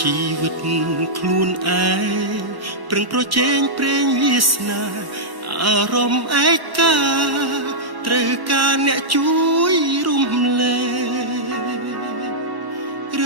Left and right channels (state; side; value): late; left; 1.1 ms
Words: ីវិតខ្លួនឯងប្រឹងប្រជែងព្រេងវាសនាអារម្មណ៍ឯកាត្រូវការអ្នកជួយរំលែករឿ